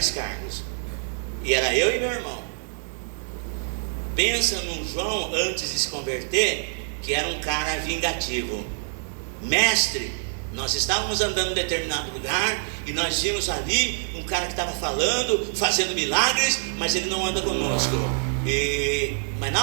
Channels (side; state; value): left; silent; 61 dB below the other